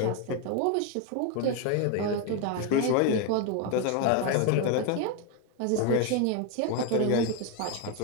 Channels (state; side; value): different; both; correlation 0.02